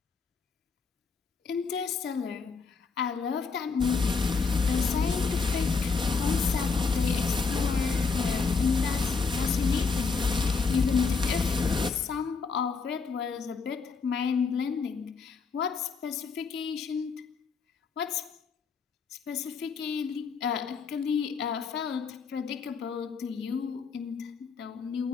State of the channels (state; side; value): quieter; right; 5.0 dB